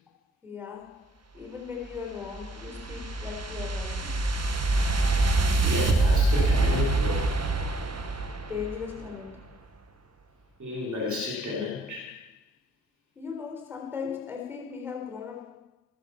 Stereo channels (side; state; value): both; normal; correlation 0.66